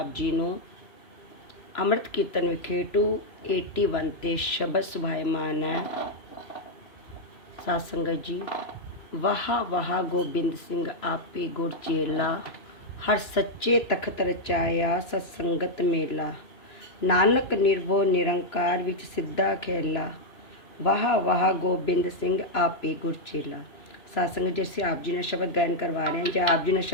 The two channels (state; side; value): late; right; 3.0 ms